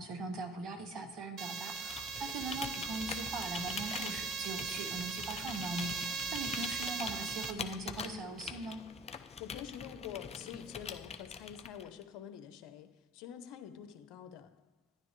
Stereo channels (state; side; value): normal; both; correlation 0.47